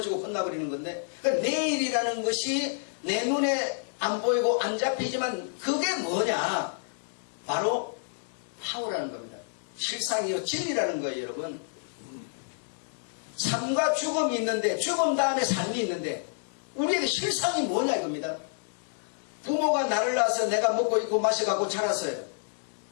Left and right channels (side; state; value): right; silent; digital silence